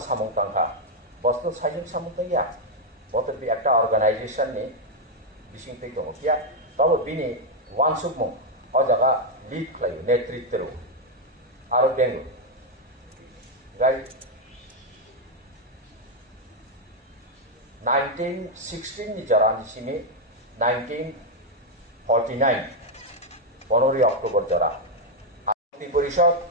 सामं तंखा बस्तु साइजों सामं तैया बत बे एकटा अर्गानाइजेशन नि बिसिं तै दङ किया तब बिनि वानसुकमु अ जागा लीड खालायो नेतृत्व आरो बेंगु गाय 1916 ni jarani sini 1949 15 অক্টোবর জরা মুক্তি পরিষদ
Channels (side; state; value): both; normal; correlation 0.01